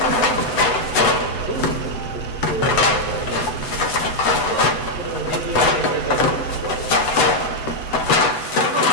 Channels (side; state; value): right; late; 8.0 ms